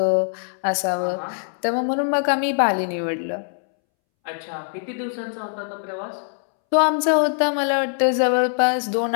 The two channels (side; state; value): right; silent; 64 dB below the other